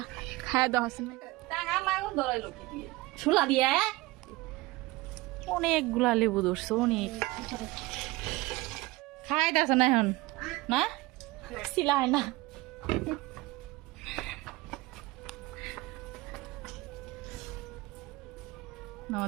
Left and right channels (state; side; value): quieter; left; 20.8 dB